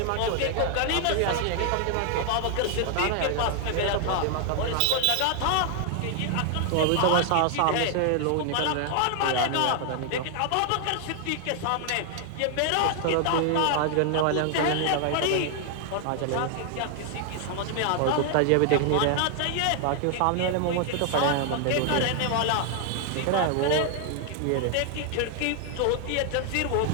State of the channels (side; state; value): both; different; correlation 0.00